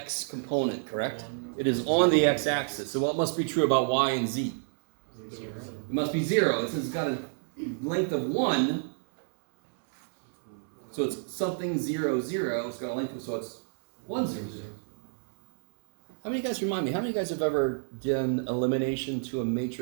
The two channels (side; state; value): left; silent; 58 dB below the other